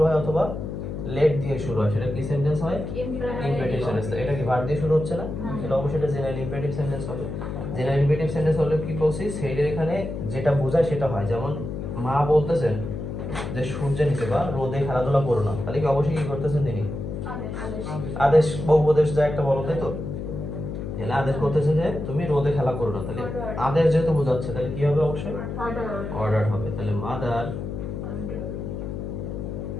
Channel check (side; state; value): left; noise; hum, 6 dB below the sound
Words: হয় অথবা লেট দিয়ে শুরু হয়, সেটা কি সেন্টেন্স হয়? Imperative sentence. এটা কি ভার্ব দিয়ে শুরু হচ্ছে না? তাহলে অবশ্যই এটা জেনারেল ইম্পারেটিভ সেন্টেন্স হবে। জেনারেল ইম্পারেটিভ সেন্টেন্স হলে কি বলছি, সেইটার এখানে যেটা বোঝায় সেটা হয়। যেমন মা বলতেছেন যে সূর্যের নিচে বা রোদে খেলাধুলা করো না, তাহলে কি অবশ্যই কি করতেছেন তিনি? আদেশ বা উপদেশ যা একটা বলো, তাই তো? তাহলে আদেশ করতেছে যে তুমি রোদে খেলা করো না, তাহলে আদেশ যেহেতু বোঝাচ্ছে তাহলে কি হবে? অবশ্যই অর্ডার হবে। তাহলে মাদার